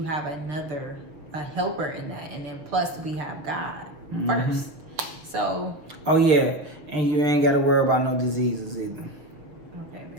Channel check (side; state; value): left; late; 6.6 ms